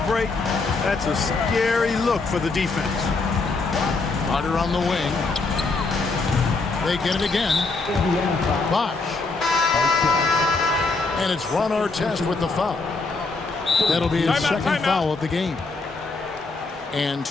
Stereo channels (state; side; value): quieter; right; 3.8 dB